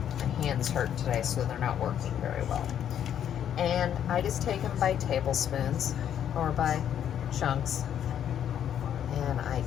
My hands hurt today, so they're not working very well. And I just take them by tablespoons or by chunks, and I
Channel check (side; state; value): right; quieter; 9.6 dB